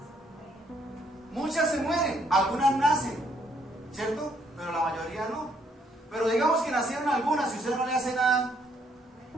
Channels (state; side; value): normal; both; correlation 0.69